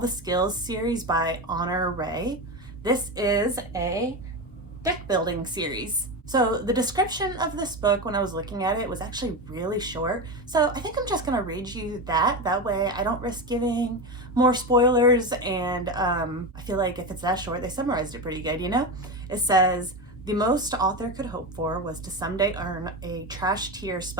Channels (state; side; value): normal; both; correlation 0.18